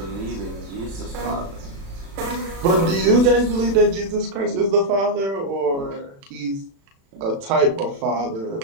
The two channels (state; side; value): late; left; 36 ms